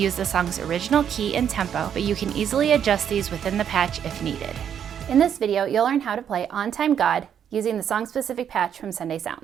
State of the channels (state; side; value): quieter; left; 8.7 dB